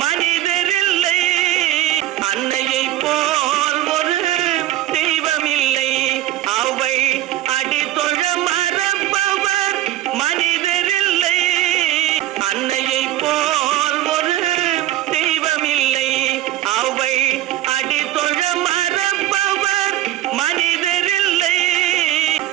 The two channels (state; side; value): quieter; left; 13.8 dB